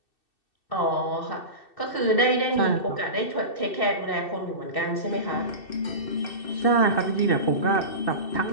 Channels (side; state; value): right; late; 2.6 ms